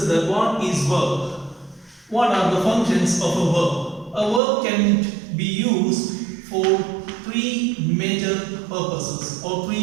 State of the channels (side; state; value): left; drops out; at 4.4 s